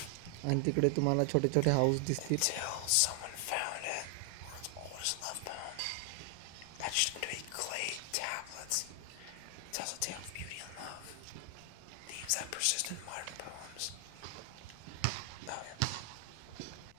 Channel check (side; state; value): both; different; correlation 0.00